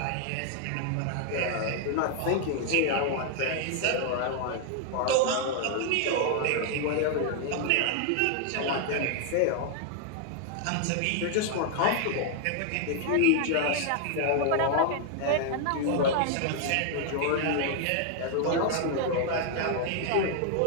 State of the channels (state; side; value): different; both; correlation 0.00